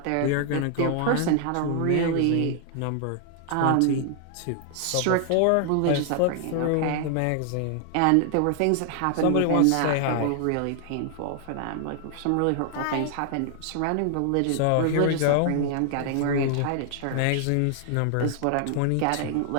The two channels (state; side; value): different; both; correlation 0.00